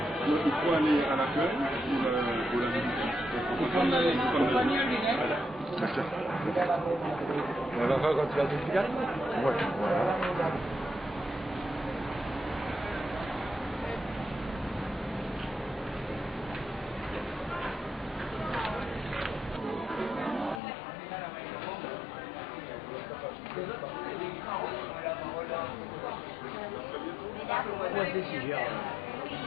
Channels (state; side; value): drops out; right; at 20.6 s